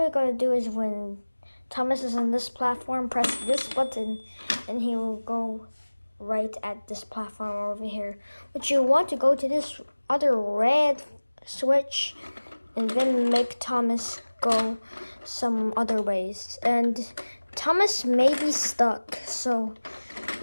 you gotta do is when Thomas is on this platform, press this button and he will go right at this platform over here. But you want to go to this other red switch and then make Thomas go some other ways. And Thomas may be stuck, so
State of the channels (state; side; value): inverted; both; correlation -1.00